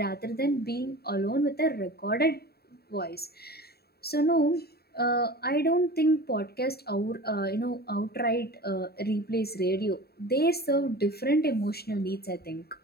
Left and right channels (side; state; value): right; late; 0.46 ms